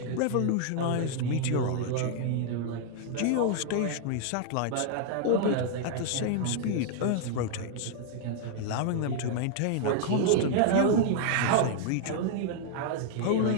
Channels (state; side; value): different; both; correlation -0.01